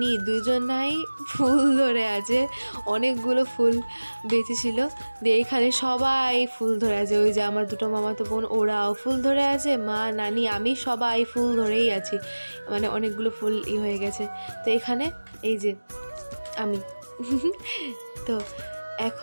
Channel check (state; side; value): inverted; both; correlation -1.00